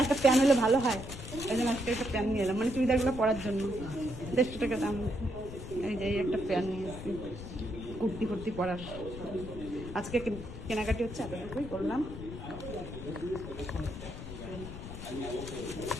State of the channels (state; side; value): noise; left; rumble, 10 dB below the sound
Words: একটা প্যান হলে ভালো হয়, ওই জন্য আজকে একটা প্যান নিয়ে এলাম, মানে চুড়িদারগুলো পরার জন্য। 150 টাকা দাম। এই যে এই একটা প্যান নিয়ে এসেছি কুর্তি ফুর্তি পরার। আজকে কেনাকাটি হচ্ছে, এতটুকুই করলাম।